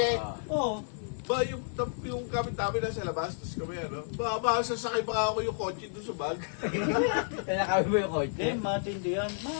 Oo. Ba, yung gamit namin nasa labas, tapos kami, sasakay pa ako yung kotse doon sa bag. Nakawin mo yung Hindi, kotse. matindi yan.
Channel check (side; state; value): right; silent; digital silence